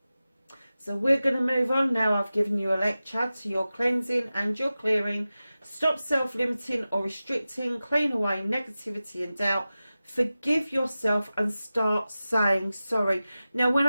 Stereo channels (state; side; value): inverted; both; correlation -0.95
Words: So we're going to move on now. I've given you a lecture to your cleansing and your clearing. Stop self-limiting or restricting. Clean away negativity and doubt. Forgive yourself and start saying sorry. Now, when